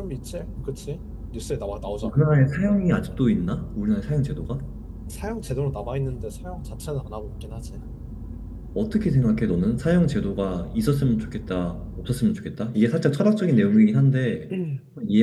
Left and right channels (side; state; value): both; identical; correlation 1.00